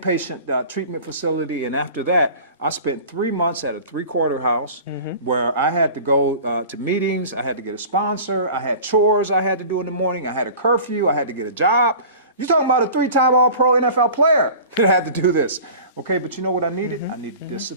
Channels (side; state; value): both; inverted; correlation -0.40